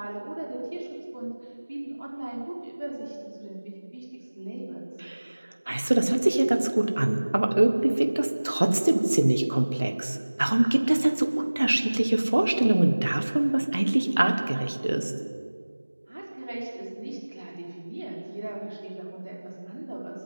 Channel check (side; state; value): both; inverted; correlation -1.00